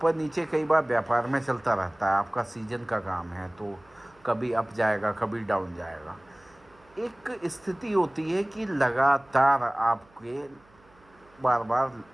नीचे कई बार व्यापार में चलता रहता है। आपका सीजन का काम है, तो कभी अप जाएगा, कभी डाउन जाएगा। एक स्थिति होती है कि लगातार आपके बार बार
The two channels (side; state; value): right; noise; hum, 29 dB below the sound